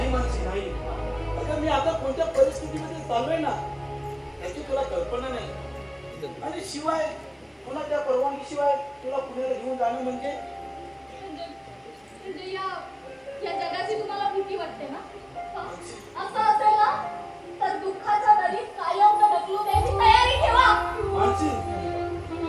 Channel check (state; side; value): identical; both; correlation 1.00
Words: मानसी, नाही. अगं मी आता कोणत्या परिस्थितीमध्ये चाललोय ना याची तुला कल्पना नाही. आणि शिवाय कोणाच्या परवानगीशिवाय तुला पुण्याला घेऊन जाणं म्हणजे या जगाची तुम्हाला भीती वाटते ना? असं असेल ना तर दुःखाच्या दरीत कायम ढकलून द्यायची तयारी ठेवा. मानसी,